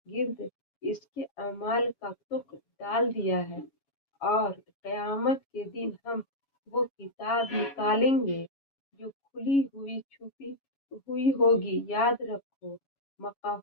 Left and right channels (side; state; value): right; late; 7.2 ms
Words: گرد اس کے اعمال کا تخم ڈال دیا ہے، اور قیامت کے دن ہم وہ کتاب نکالیں گے جو کھلی ہوئی چھپی ہوئی ہوگی۔ یاد رکھو